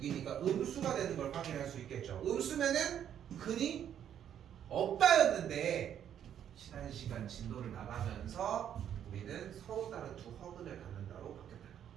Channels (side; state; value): left; quieter; 9.7 dB